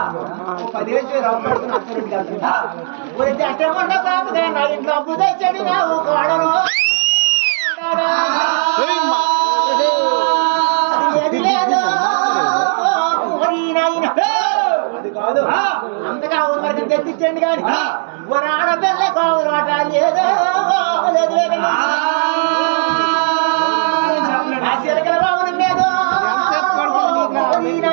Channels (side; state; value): left; silent; digital silence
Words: 10 ఏళ్ళు రాబడుతున్న అత్తరెడ్డి గారు అట్టమంట కాపుగా నా ఇంట్లో అప్పు తెచ్చాడు నాకు కోడను. అది లేదు అది కాదు. అంతగా ఊరికి తెప్పించండి కానీ ఆడపిల్ల కావులు ఆట లేదో లేదు లేదు ఆ చిలకల బాబుని మీద